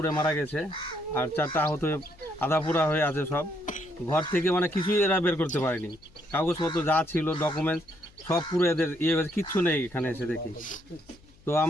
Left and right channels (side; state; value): left; noise; hum, 27 dB below the sound